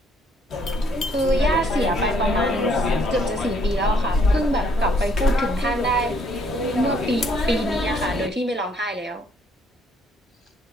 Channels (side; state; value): both; normal; correlation 0.66